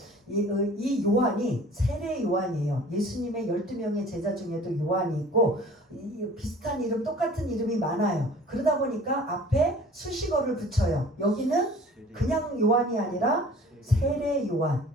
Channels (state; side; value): normal; both; correlation 0.48